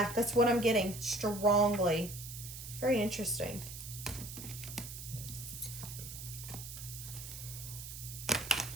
what I'm getting strongly. Very interesting.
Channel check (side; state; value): right; noise; hiss, 10 dB below the sound